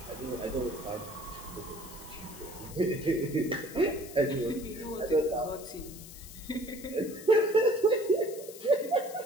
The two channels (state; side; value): noise; left; hiss, 15 dB below the sound